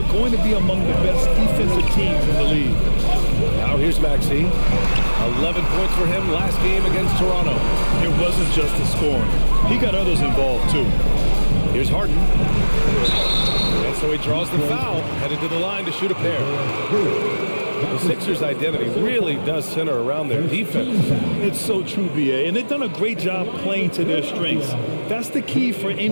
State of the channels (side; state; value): both; inverted; correlation -1.00